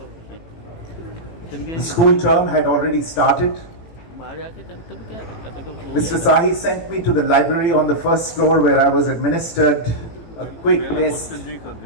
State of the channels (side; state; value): right; late; 17 ms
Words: The school term had already started. Mr. Sahi sent me to the library on the first floor where I was administered a quick test